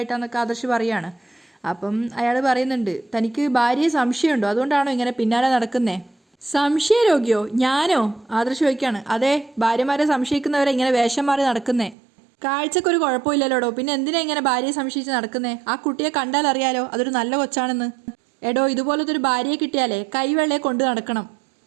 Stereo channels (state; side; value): drops out; left; at 12.0 s